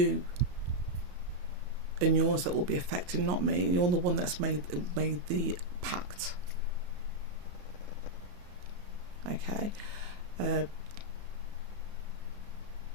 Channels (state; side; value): late; left; 34 ms